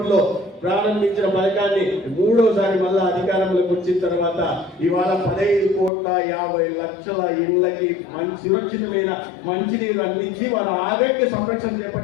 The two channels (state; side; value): drops out; right; at 5.9 s